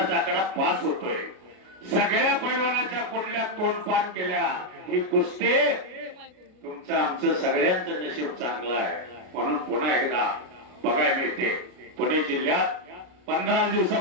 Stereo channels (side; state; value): left; late; 33 ms